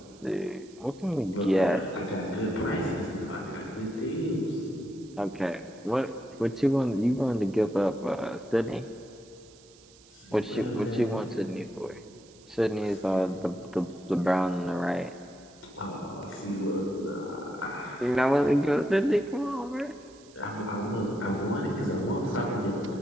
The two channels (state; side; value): noise; right; hiss, 25 dB below the sound